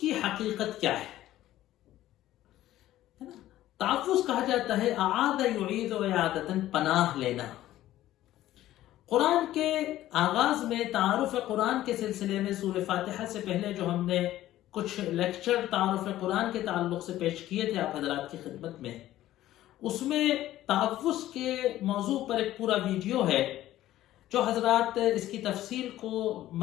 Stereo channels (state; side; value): quieter; right; 14.2 dB